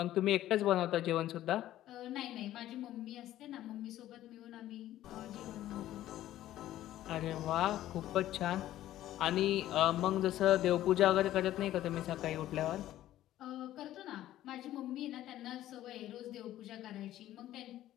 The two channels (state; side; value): quieter; right; 13.6 dB